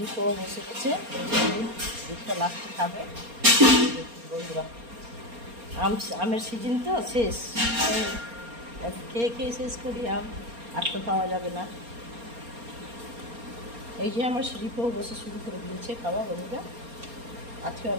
বসে গেছে। দুধটা লাস্টে খাবে বন্ধুরা। আমের সিজন তো শেষ, খেয়ে শেষ করি আম, আর তো পাওয়া যাবে না। এই যে আমার সিঁড়িকেও বসে শুরু করে দিয়েছে খাওয়া বন্ধুরা। আজকে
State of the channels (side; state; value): left; late; 4.3 ms